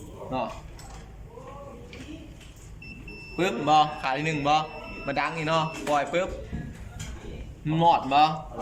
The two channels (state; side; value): identical; both; correlation 1.00